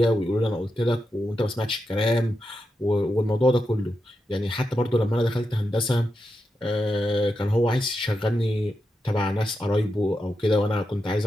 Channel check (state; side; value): normal; both; correlation 0.87